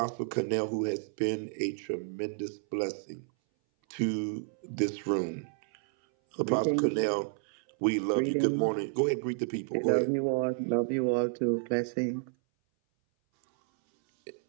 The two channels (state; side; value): silent; left; 57 dB below the other